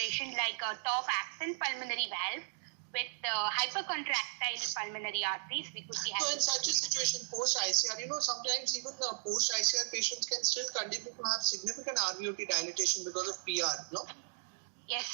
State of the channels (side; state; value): left; silent; digital silence